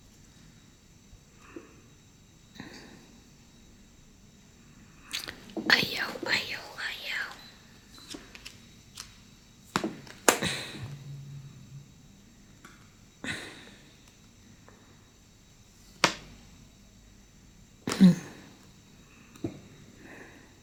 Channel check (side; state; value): both; identical; correlation 1.00